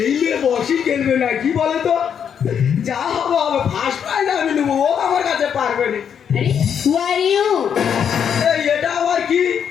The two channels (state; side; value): quieter; right; 8.0 dB